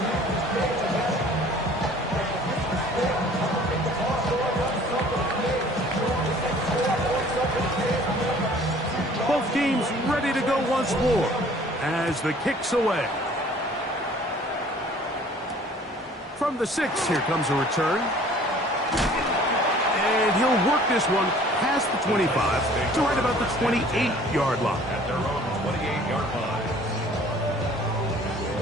Both teams ready to go once more as the kick's away. From the 6, here comes a return. And he'll work this one past the 25 to right about the 28-yard line. At their own 28-yard line.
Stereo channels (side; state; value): both; normal; correlation 0.52